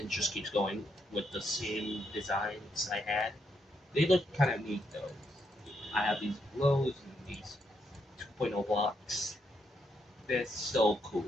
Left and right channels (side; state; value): both; normal; correlation 0.78